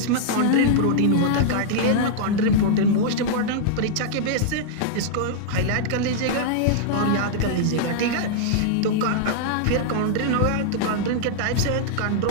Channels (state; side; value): different; both; correlation -0.02